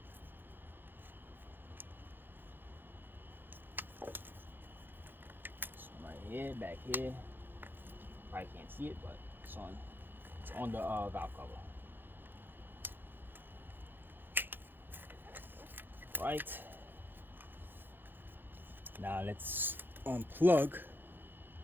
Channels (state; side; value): late; left; 0.096 ms